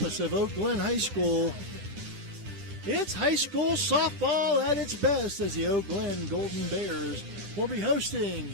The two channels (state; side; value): late; left; 10 ms